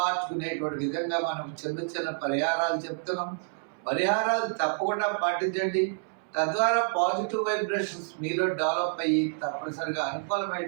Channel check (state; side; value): silent; left; 59 dB below the other